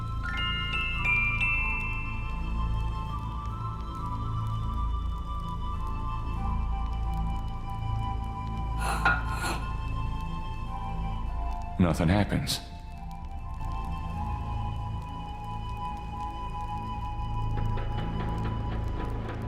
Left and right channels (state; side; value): identical; both; correlation 1.00